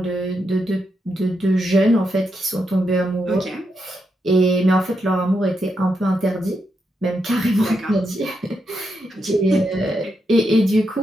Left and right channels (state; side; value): normal; both; correlation 0.83